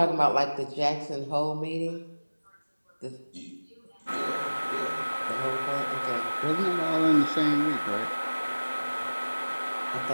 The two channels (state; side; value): inverted; both; correlation -1.00